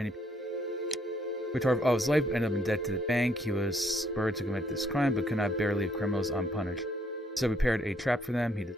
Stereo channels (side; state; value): both; normal; correlation 0.68